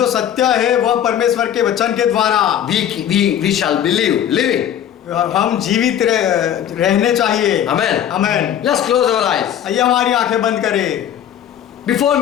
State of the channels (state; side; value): quieter; right; 10.1 dB